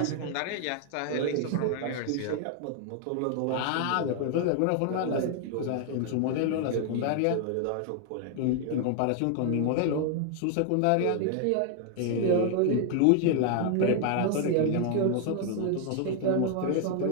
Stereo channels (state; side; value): different; both; correlation 0.00